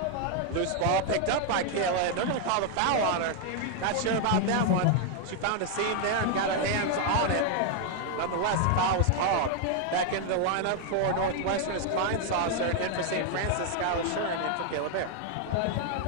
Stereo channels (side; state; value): both; different; correlation 0.00